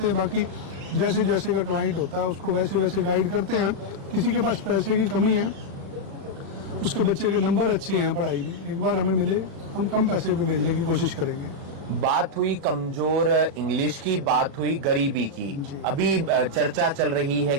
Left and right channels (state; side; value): late; left; 36 ms